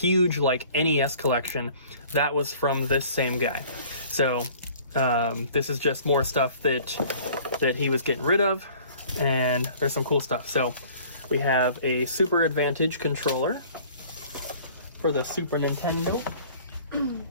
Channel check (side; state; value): both; inverted; correlation -0.50